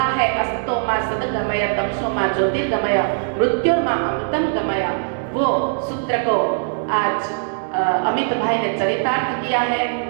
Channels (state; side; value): silent; left; digital silence